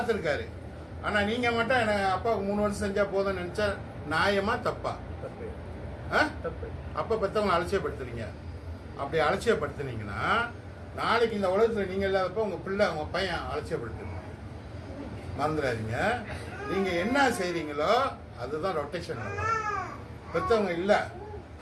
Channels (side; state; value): both; identical; correlation 1.00